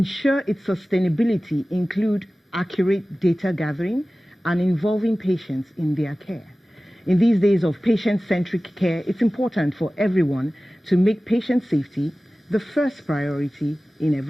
its sustainability include accurate data gathering and involving patients in their care. In these days of patient-centric care, it's important for everyone to make patient safety the first priority in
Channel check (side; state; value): both; normal; correlation 0.97